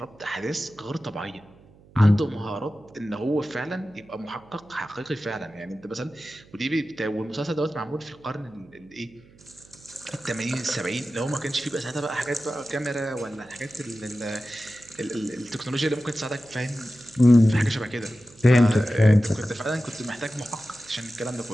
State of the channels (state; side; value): noise; right; hum, 25 dB below the sound